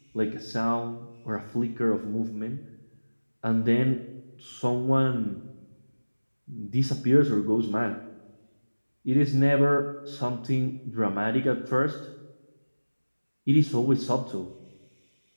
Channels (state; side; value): inverted; both; correlation -1.00